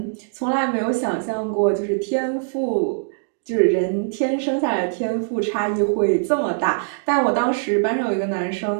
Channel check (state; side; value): silent; left; digital silence